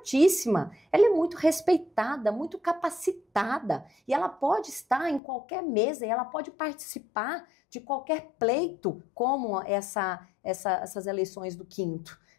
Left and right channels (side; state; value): right; drops out; at 5.2 s